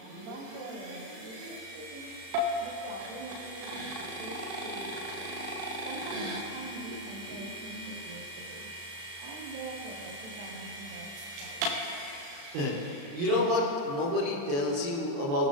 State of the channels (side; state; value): left; late; 36 ms